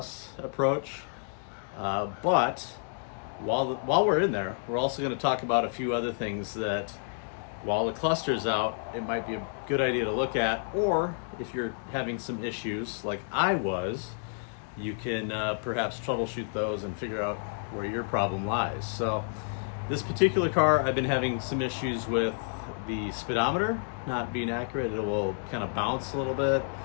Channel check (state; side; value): silent; right; digital silence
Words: approach. But while we're in there, we're also going to talk about a few other things that, while the cluster's out, it might be a good idea to look at, or if you're having some issues like I was, you can perhaps troubleshoot those and figure out where your problem lies. So this particular car, I've been having some issues with the speedometer not being accurate. It will kind of bounce a little bit.